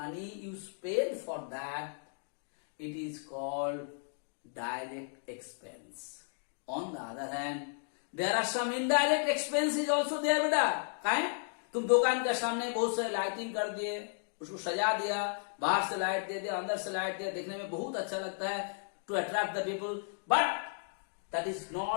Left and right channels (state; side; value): silent; right; digital silence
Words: you spend for that, it is called direct expense. On the other hand, there are some indirect expenses also there बेटा. काहे? तुम दुकान के सामने बहुत सारे lighting कर दिए, उसको सजा दिया, बाहर से लाइट दे दिया, अंदर से लाइट दिया, देखने में बहुत अच्छा लगता है, to attract the people, but that is